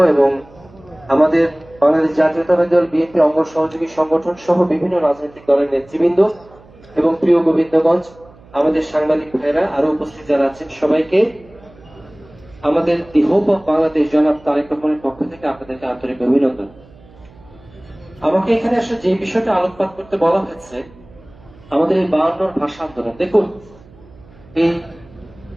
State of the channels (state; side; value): noise; right; hum, 25 dB below the sound